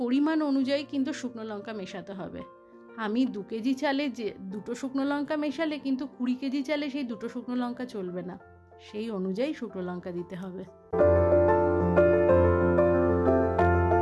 পরিমাণ অনুযায়ী কিন্তু শুকনো লঙ্কা মেশাতে হবে। আমি 2 কেজি চালে যে 2টো শুকনো লঙ্কা মেশালে কিন্তু 20 কেজি চালে সেই 2টো শুকনো লঙ্কা চলবে না, সেই অনুযায়ী শুকনো লঙ্কা দিতে হবে।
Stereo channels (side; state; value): both; identical; correlation 1.00